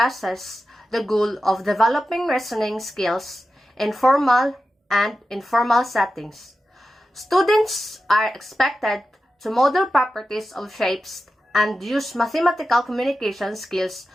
the goal of developing reasoning skills in formal and informal settings. Students are expected to model properties of shapes and use mathematical communication skills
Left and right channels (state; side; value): normal; both; correlation 0.92